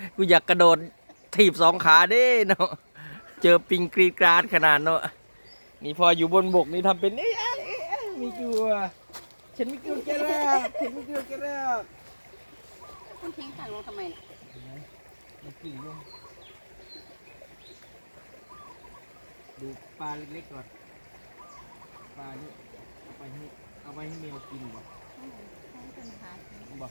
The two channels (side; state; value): both; inverted; correlation -1.00